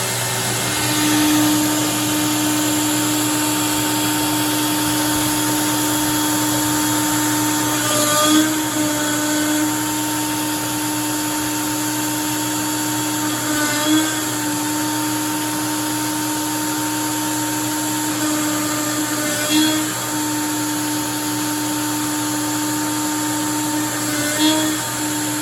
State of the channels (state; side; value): identical; both; correlation 1.00